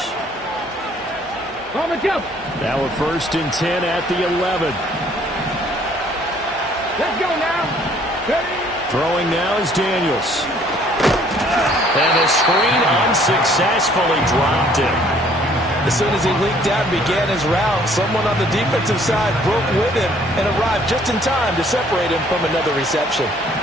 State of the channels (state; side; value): normal; both; correlation 0.60